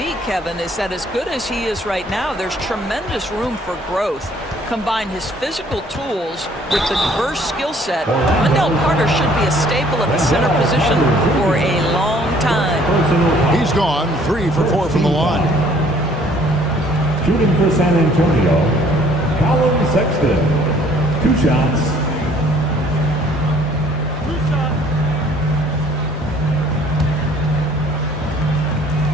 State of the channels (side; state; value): both; normal; correlation 0.58